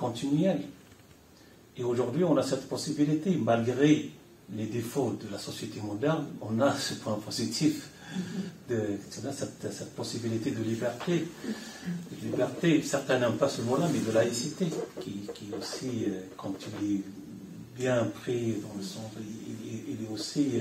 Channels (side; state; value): both; identical; correlation 1.00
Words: Et aujourd'hui, on a cette possibilité, malgré les défauts de la société moderne, on a ce point positif, cette possibilité de liberté. Liberté, certains n'aiment pas ce mot-là, mais de laïcité, qui aussi, quand il est bien pris dans le sens, il est aussi